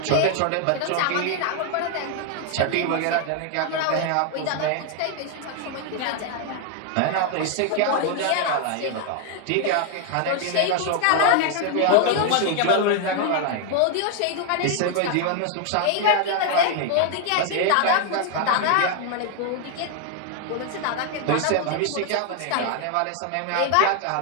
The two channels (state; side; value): different; both; correlation 0.01